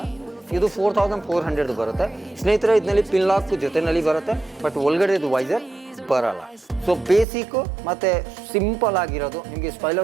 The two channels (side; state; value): left; drops out; at 7.2 s